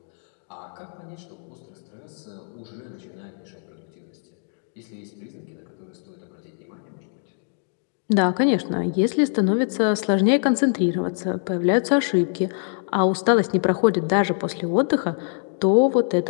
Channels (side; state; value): right; silent; digital silence